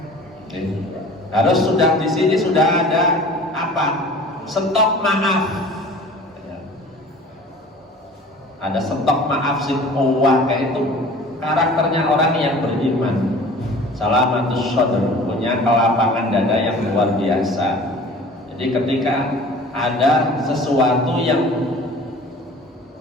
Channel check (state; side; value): normal; both; correlation 0.45